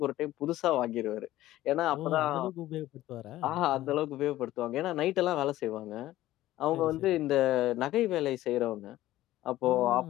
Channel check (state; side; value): quieter; right; 15.2 dB